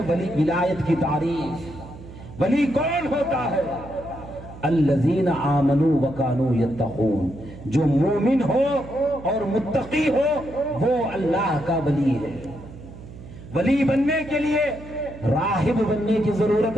ولی ولایت کی تعریف. ولی کون ہوتا ہے؟ الذین آمنوا وکانوا یتقون. جو مومن ہو اور متقی ہو وہ اللہ کا ولی ہے. ولی بننے کے لیے راہب بننے کی ضرورت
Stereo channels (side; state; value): right; noise; hum, 16 dB below the sound